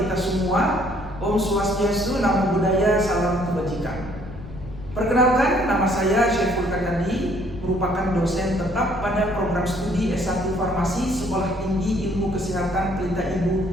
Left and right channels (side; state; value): left; noise; rumble, 14 dB below the sound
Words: kita semua. Om Swastiastu, Namo Buddhaya, salam kebajikan. Perkenalkan, nama saya Syaiful Kadandi, merupakan dosen tetap pada program studi S1 Farmasi Sekolah Tinggi Ilmu Kesehatan Pelita Ibu